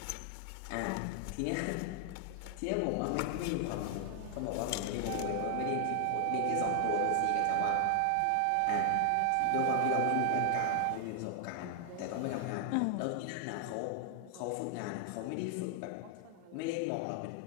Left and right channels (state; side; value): different; both; correlation 0.00